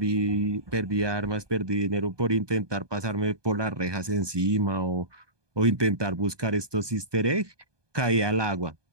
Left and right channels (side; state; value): left; late; 1.2 ms